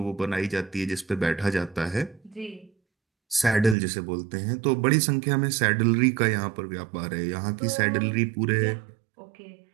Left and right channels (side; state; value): left; drops out; at 3.8 s